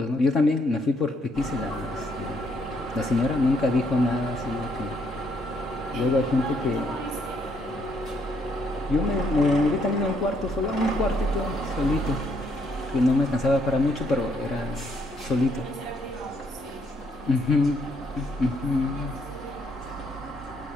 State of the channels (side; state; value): both; normal; correlation 0.71